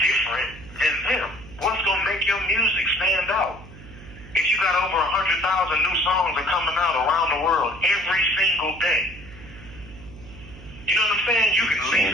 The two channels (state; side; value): noise; right; hum, 17 dB below the sound